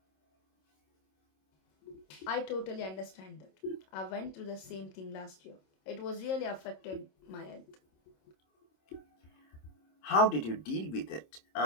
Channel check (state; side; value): late; right; 26 ms